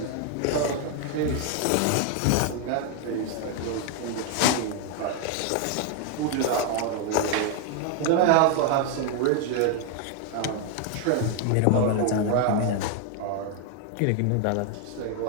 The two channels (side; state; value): both; different; correlation 0.00